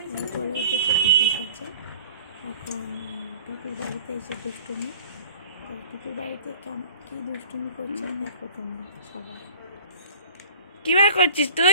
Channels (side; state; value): both; inverted; correlation -0.42